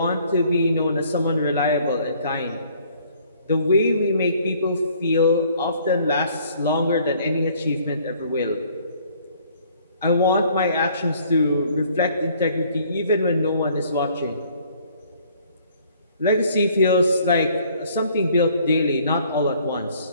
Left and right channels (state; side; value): inverted; both; correlation -0.60